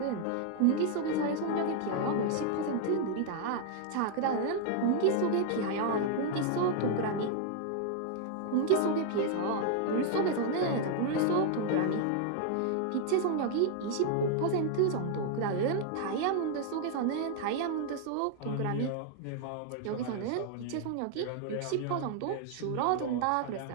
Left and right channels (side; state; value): both; different; correlation 0.00